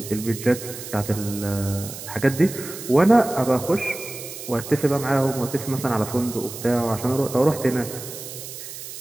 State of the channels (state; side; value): noise; right; hiss, 11 dB below the sound